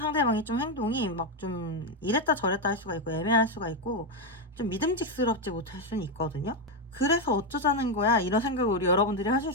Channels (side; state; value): both; normal; correlation 0.07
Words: 좀 행동이 막 좀 이랬다 저랬다 할 수가 있고 애매할 수가 있고 좀 믿음직스럽지 못할 수는 있거든요. 그래서 어쩌자는 거야 이런 생각을 우리 여러분들이 하실